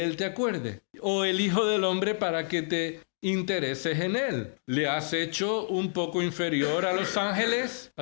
él te acuerdes? ¿O el hijo del hombre para que te intereses en él? ¿Le has hecho un poco inferior a los ángeles?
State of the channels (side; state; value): right; silent; digital silence